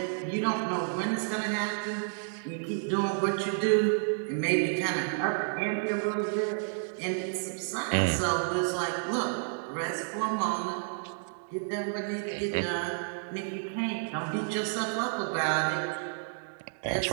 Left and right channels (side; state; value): left; silent; digital silence